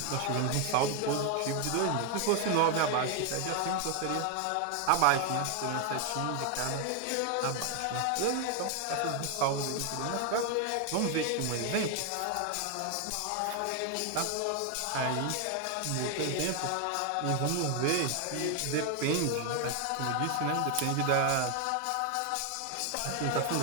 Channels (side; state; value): both; different; correlation 0.01